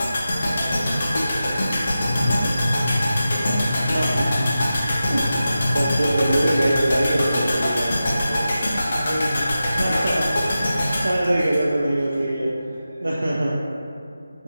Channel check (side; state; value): both; inverted; correlation -0.92